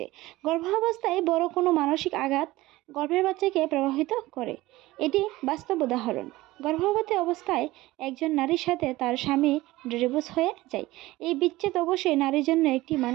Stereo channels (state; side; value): quieter; left; 18.4 dB